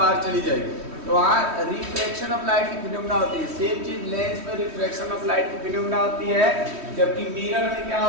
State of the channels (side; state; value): left; late; 3.1 ms